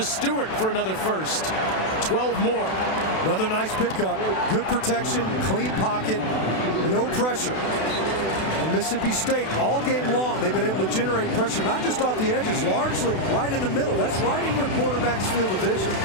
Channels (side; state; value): right; late; 32 ms